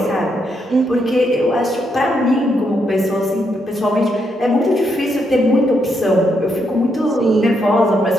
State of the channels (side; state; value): both; normal; correlation 0.78